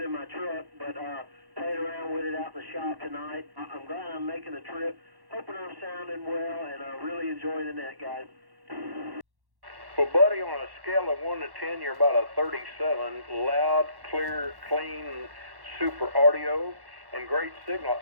my truck, but playing around with it out in the shop tonight. I'm glad I'm making the trip. Hoping I'm sounding well and really enjoying the net, guys. Well, buddy, on a scale of 1 to 10, you're about a 37. Loud, clear, clean, super audio, and great signal.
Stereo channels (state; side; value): late; left; 1.1 ms